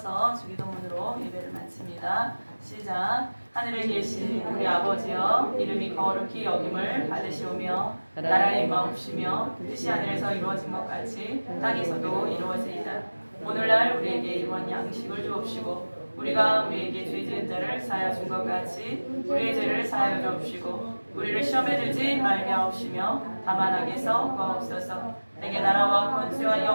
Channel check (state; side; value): inverted; both; correlation -1.00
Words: 주기도문으로 예배를 마칩니다. 시작. 하늘에 계신 우리 아버지여, 이름이 거룩히 여김을 받으시오며 나라의 마옵시며 뜻이 하늘에서 이루어진 것 같이 땅에서도 이루어지이다. 오늘날 우리에게 일원 양식을 주옵시고 우리가 우리에게 죄 지은 자를 사하여 준 것 같이 우리의 죄를 사하여 주옵시고 우리를 시험에 들지 말게 하옵시며 다만 악에서 구하옵소서. 내게 나라와 권세와